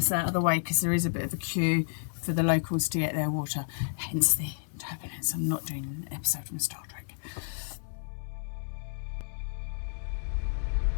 out of the way because there is a bit of a queue for the locals to get their water, hence the turbulence. I'm not doing an episode from Star Trek.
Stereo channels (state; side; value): silent; right; digital silence